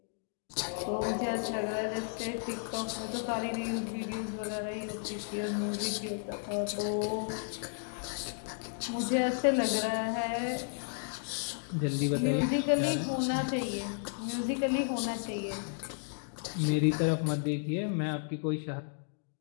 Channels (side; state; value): right; silent; digital silence